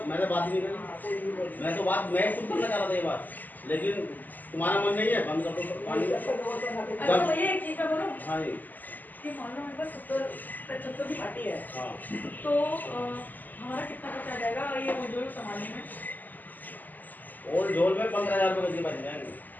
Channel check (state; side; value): late; right; 0.085 ms